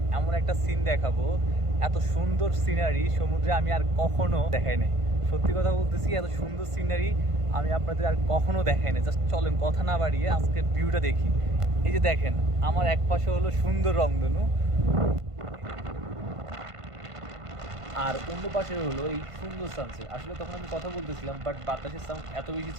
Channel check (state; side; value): late; left; 1.5 ms